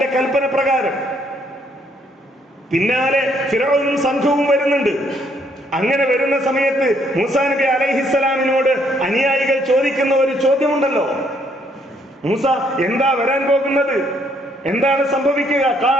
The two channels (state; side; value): normal; both; correlation 0.69